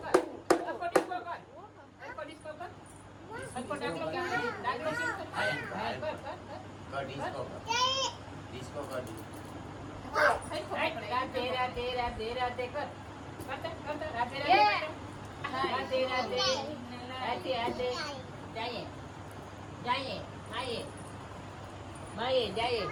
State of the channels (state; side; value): identical; both; correlation 1.00